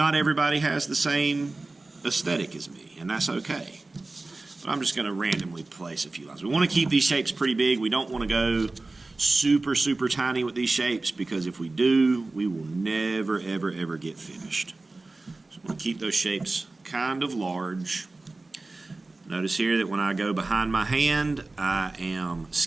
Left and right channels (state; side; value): quieter; left; 3.3 dB